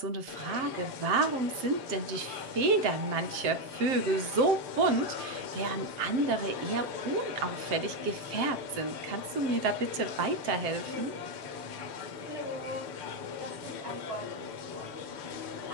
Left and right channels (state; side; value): late; left; 7.7 ms